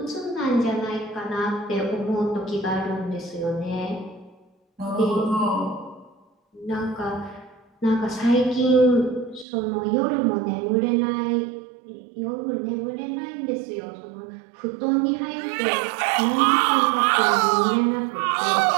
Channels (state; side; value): drops out; left; at 9.5 s